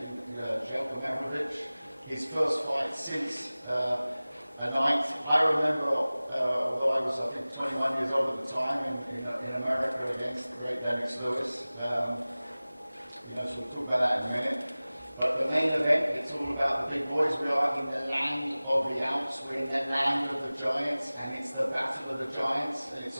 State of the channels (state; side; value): inverted; both; correlation -0.98